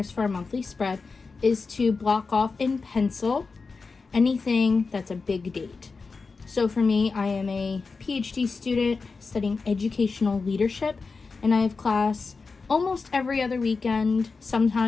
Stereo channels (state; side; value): quieter; right; 4.4 dB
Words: for a monthly spread is to block off in pencil anything that's a big date. So for me, I am a PhD student studying educational leadership, and I have class almost every other weekend.